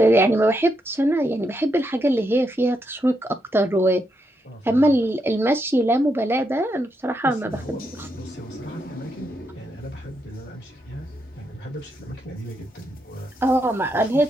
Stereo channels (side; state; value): both; normal; correlation 0.81